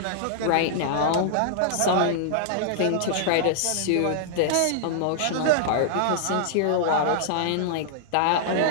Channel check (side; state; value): both; different; correlation -0.01